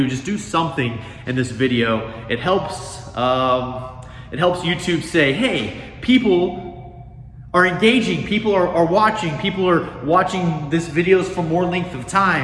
Just do something in this video. It helps YouTube say, hey, people are engaging, people are watching this videos for more length of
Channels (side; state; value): both; identical; correlation 1.00